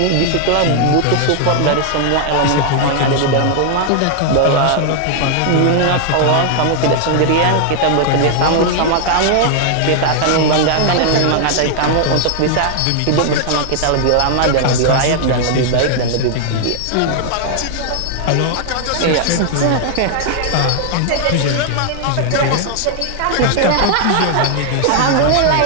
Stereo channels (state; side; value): different; both; correlation 0.00